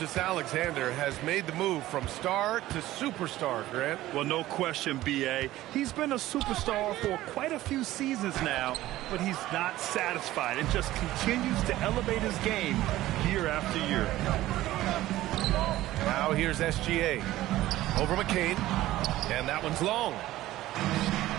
has made the move from star to superstar, Grant. Well, no question, B.A. He's been a superstar for quite a few seasons now, but he's not satisfied and just continues to elevate his game year after year. Now here's SGA. Over McCain. And that one's long.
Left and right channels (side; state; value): left; quieter; 15.6 dB